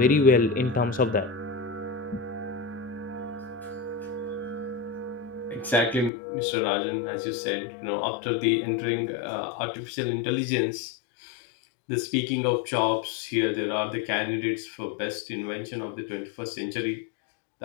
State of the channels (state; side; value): drops out; right; at 6.1 s